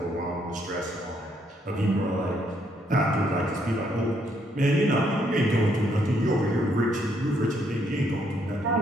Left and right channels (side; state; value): both; normal; correlation 0.72